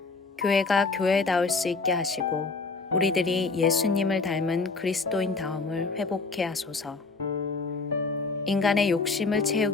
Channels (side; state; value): right; quieter; 4.1 dB